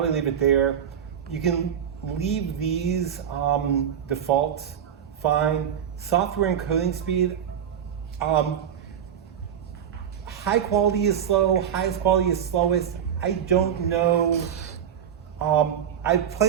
leave it there. You can leave these defaults, fine. Software encoding speed, high quality is slow, highest quality is slowest. I don't know. I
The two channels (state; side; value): quieter; left; 8.8 dB